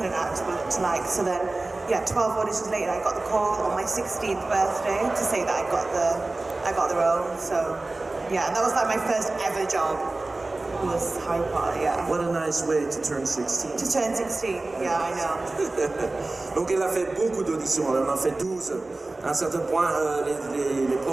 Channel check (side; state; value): left; quieter; 3.1 dB